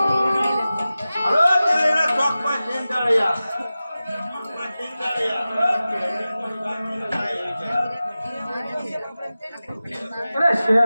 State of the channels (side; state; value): both; inverted; correlation -0.95